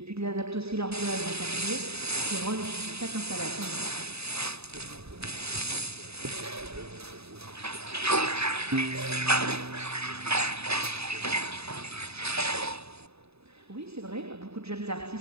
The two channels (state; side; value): late; left; 0.79 ms